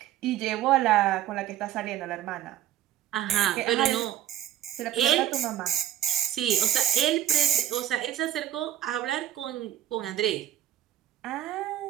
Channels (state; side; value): quieter; left; 12.0 dB